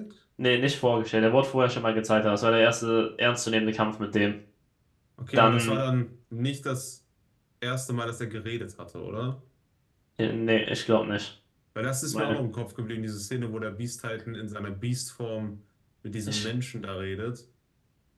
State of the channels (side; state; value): both; identical; correlation 1.00